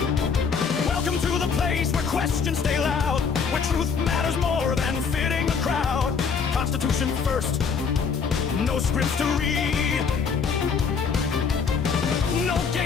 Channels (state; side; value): quieter; right; 5.9 dB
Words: Welcome to the place where questions stay loud, where truth matters more than fitting the crowd. Constitution first, no scripts to read. No